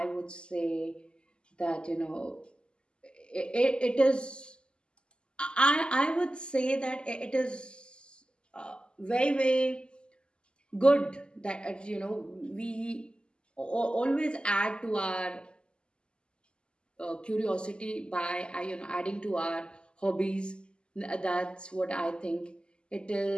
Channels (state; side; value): late; right; 0.049 ms